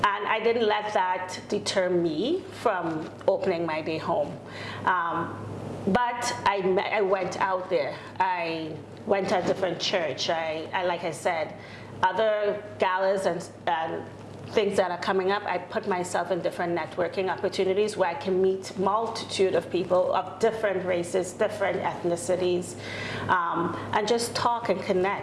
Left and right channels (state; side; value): identical; both; correlation 1.00